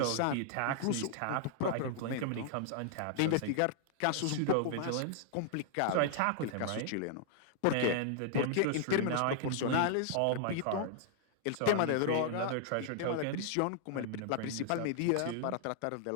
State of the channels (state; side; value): different; both; correlation -0.01